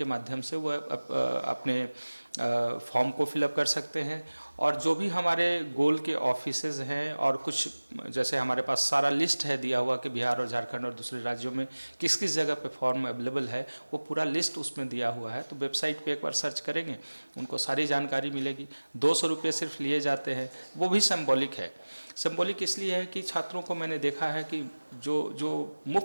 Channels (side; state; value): both; inverted; correlation -1.00